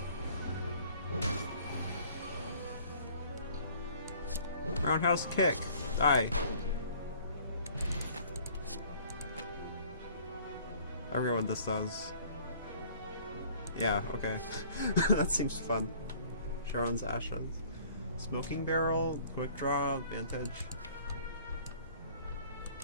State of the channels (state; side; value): inverted; both; correlation -0.54